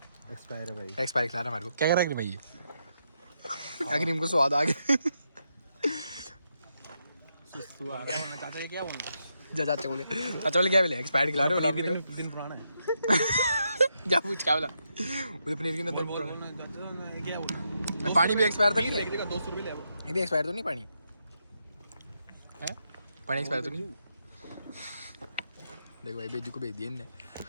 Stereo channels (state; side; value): inverted; both; correlation -0.82